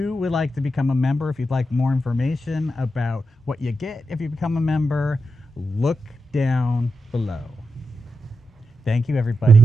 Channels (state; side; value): normal; both; correlation 0.87